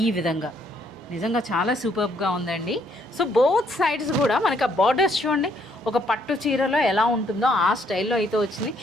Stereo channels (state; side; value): normal; both; correlation 0.69